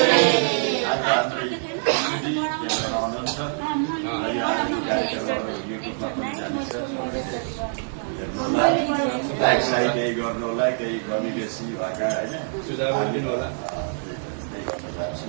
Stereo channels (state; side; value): silent; left; digital silence